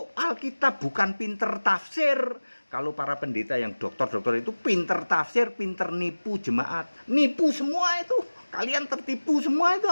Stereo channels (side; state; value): both; inverted; correlation -1.00